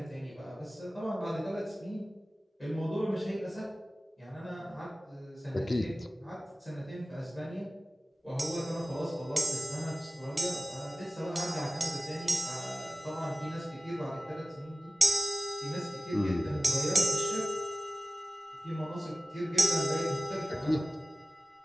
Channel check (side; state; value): both; normal; correlation 0.95